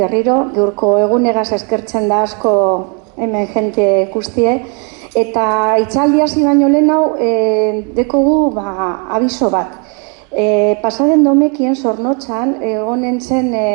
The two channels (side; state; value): left; quieter; 36.8 dB